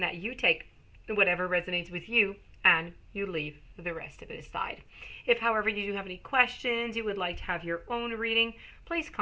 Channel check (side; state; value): both; identical; correlation 1.00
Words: you take whatever resonates with you and you leave the rest of it aside. If, however, you do have any questions, you would like to have your own reading, please